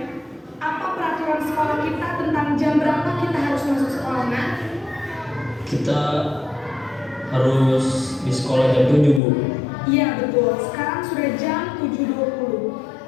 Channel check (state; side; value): drops out; right; at 9.2 s